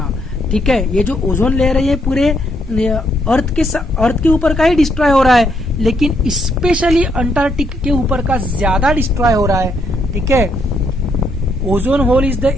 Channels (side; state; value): both; normal; correlation 0.74